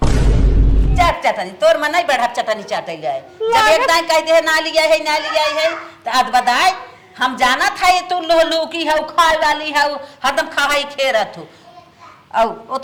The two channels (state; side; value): identical; both; correlation 1.00